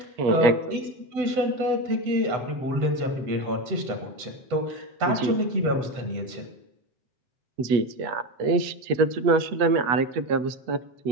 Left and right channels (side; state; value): left; late; 8.2 ms